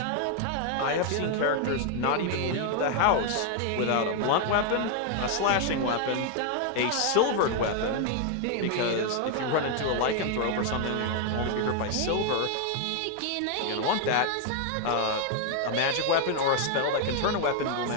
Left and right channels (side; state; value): both; different; correlation 0.00